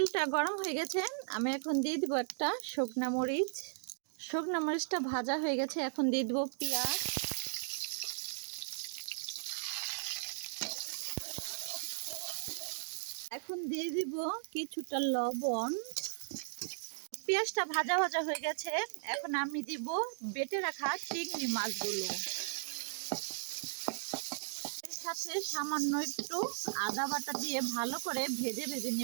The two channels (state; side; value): silent; left; digital silence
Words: গরম হয়ে গেছে, আমি এখন দিয়ে দিব একটা শুকনা মরিচ। শুকনা মরিচটা ভাজা হয়ে গেছে, এখন দিয়ে দিব পেঁয়াজ। এখন দিয়ে দিব কিছুটা লবণ। পেঁয়াজটা ভাজা ভাজা হয়ে গেছে, এখন আমি দিব বেটে রাখা চিংড়ি মাছগুলো। এর সাথে সামান্য একটু আদা বাটা দিয়ে ভালো করে ভেজে ভেজে